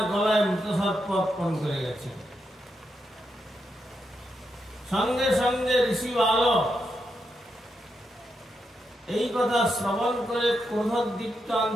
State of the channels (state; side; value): normal; both; correlation 0.83